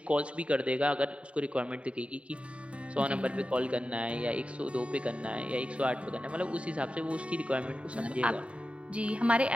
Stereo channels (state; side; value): late; left; 0.062 ms